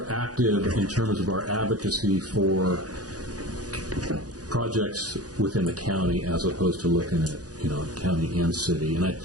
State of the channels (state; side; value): late; left; 0.68 ms